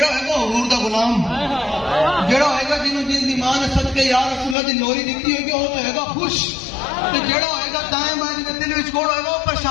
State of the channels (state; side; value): drops out; right; at 4.5 s